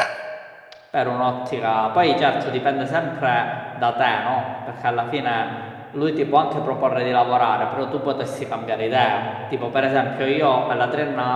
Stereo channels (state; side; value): identical; both; correlation 1.00